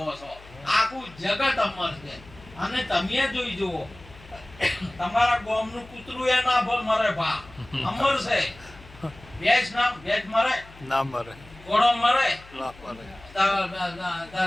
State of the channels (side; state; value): left; noise; hum, 21 dB below the sound